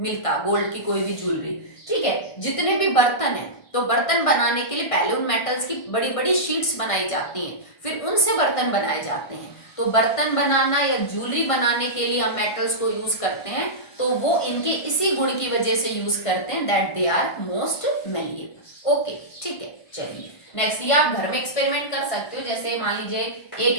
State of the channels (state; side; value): late; right; 1.5 ms